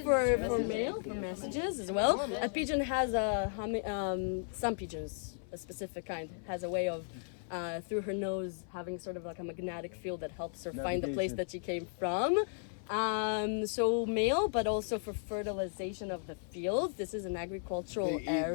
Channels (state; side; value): silent; right; 54 dB below the other